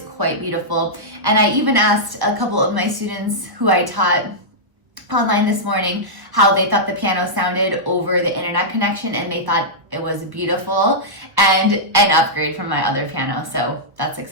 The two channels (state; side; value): late; left; 1.0 ms